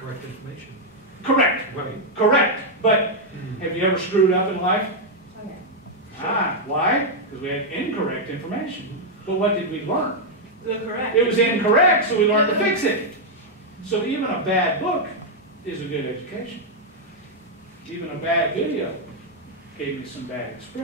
information. Correct. Right. Correct. But have you ever screwed up in life? Okay. Why? Because we had incorrect information. But what did we learn? The correct. It was incorrect, so we learned to fix it. So even a bad book is a good education. Even a bad video gave me some bad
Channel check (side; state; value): both; normal; correlation -0.02